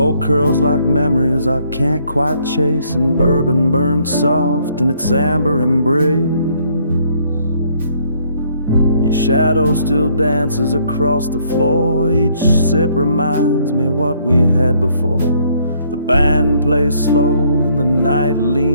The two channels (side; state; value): both; inverted; correlation -0.66